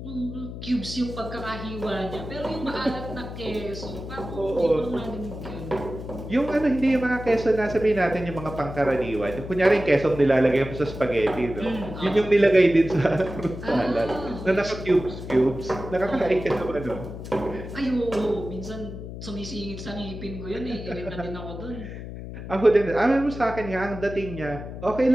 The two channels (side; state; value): left; noise; hum, 10 dB below the sound